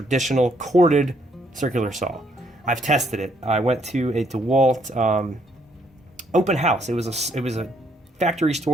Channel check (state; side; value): normal; both; correlation 0.71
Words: corded circular saw. I've tested it. I went to a Dewalt open house. It was a factory